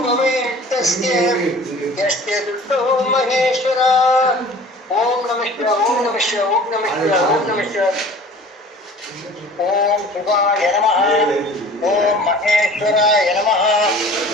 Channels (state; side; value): normal; both; correlation 0.46